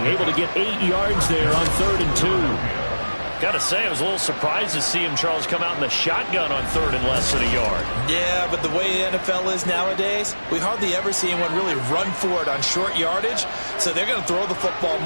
Able to get 8 yards there on 3rd and 2. Got to say, I was a little surprised to see him, Charles, come out in the shotgun on 3rd and less than a yard. Yeah, but the way the NFL is nowadays, we hardly ever see anyone really run for it on short yardage. So they're going to throw the football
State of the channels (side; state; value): both; inverted; correlation -1.00